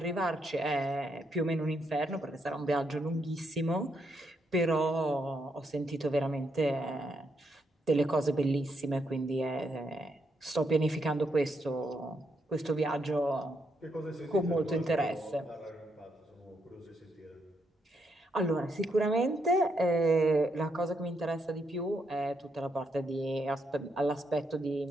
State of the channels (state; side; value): normal; both; correlation 0.78